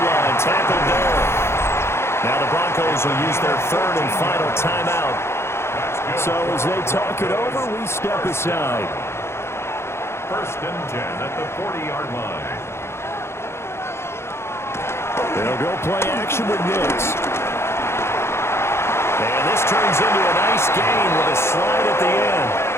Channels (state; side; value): late; right; 0.12 ms